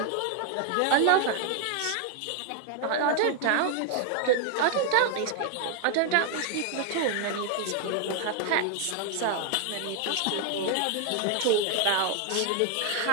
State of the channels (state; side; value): different; both; correlation 0.00